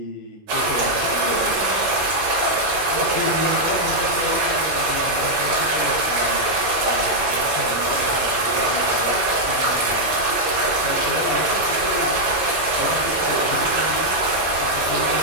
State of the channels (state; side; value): normal; both; correlation -0.03